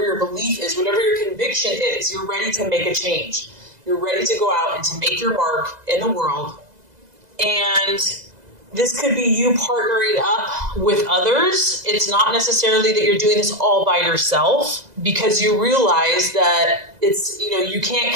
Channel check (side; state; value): left; late; 2.0 ms